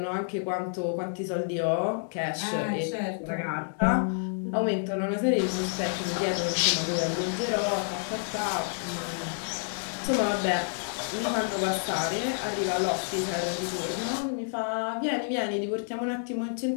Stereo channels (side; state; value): right; silent; digital silence